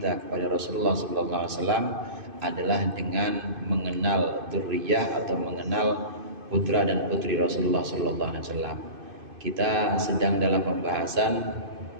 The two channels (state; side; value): late; left; 2.5 ms